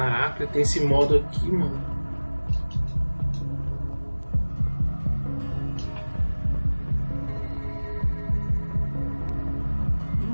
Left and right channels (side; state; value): both; inverted; correlation -1.00